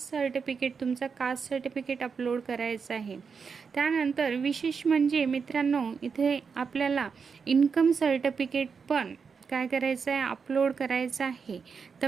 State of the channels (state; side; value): quieter; left; 5.7 dB